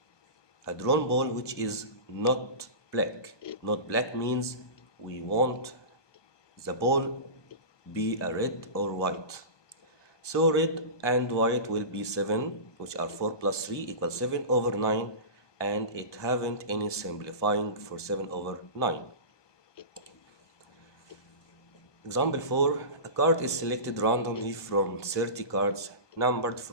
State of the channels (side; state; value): right; late; 1.2 ms